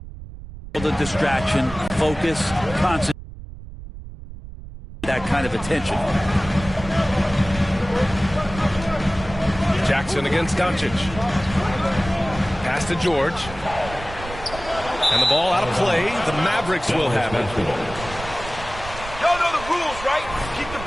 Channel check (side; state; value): right; noise; rumble, 13 dB below the sound